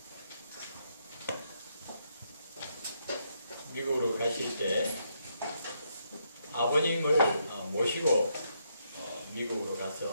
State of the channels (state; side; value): inverted; both; correlation -0.77